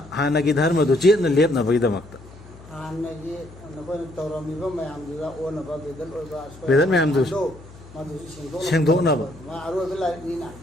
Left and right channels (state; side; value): noise; left; hum, 20 dB below the sound